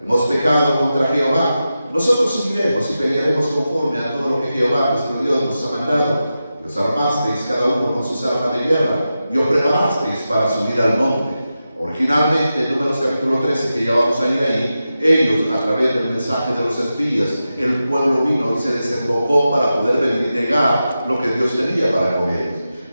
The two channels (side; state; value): both; inverted; correlation -0.91